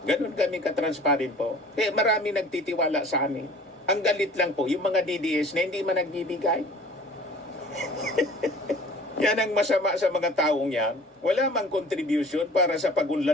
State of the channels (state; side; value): normal; both; correlation 0.47